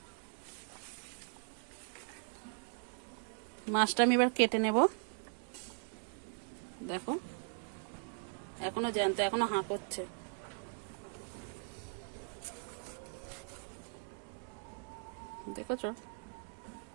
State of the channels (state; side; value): silent; left; 52 dB below the other